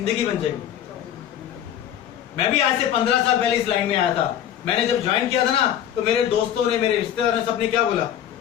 बन जाएगी। मैं भी आज से 15 साल पहले इस लाइन में आया था। मैंने जब ज्वाइन किया था ना तो मेरे दोस्तों ने, मेरे रिश्तेदार ने, सबने क्या बोला,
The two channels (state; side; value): quieter; right; 10.5 dB